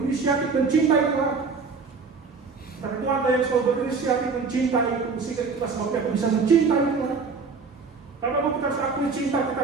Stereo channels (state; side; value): quieter; left; 4.8 dB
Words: mencintai Tuhan. Tapi Tuhan yang selalu berinisiatif mencintaiku, sehingga itulah sebabnya aku bisa mencintai Tuhan. Karena kita harus akui cinta kita